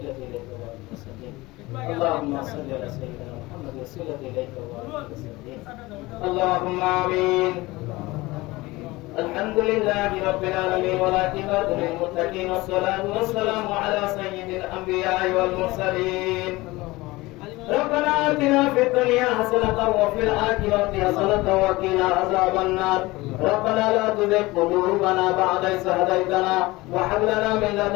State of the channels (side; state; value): right; quieter; 20.8 dB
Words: إليك وبارك وسلم. اللهم صل على سيدنا محمد وسيلة إليك وبارك وسلم. اللهم آمين. الحمد لله رب العالمين والعاقبة للمتقين والصلاة والسلام على سيد الأنبياء والمرسلين. ربنا آتنا في الدنيا حسنة وفي الآخرة حسنة وقنا عذاب النار. ربنا لا تزغ قلوبنا بعد إذ هديتنا وهب لنا من